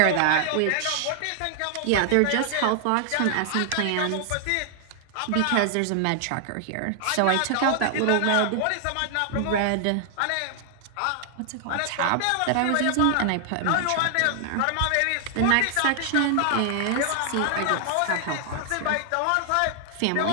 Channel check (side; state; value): both; different; correlation 0.00